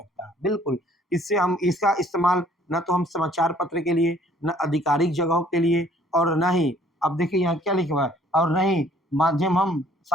बिल्कुल इससे हम इसका इस्तेमाल न तो हम समाचार पत्र के लिए, न आधिकारिक जगहों के लिए, और न ही, अब देखिए यहाँ क्या लिखा हुआ है, और न ही माध्यम हम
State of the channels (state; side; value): normal; both; correlation 0.58